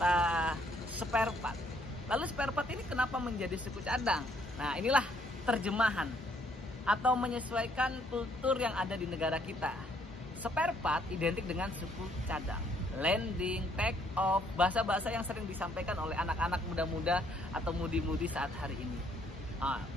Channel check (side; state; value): both; normal; correlation 0.67